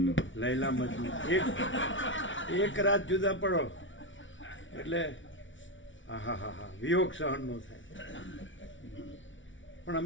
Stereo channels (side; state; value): right; late; 0.56 ms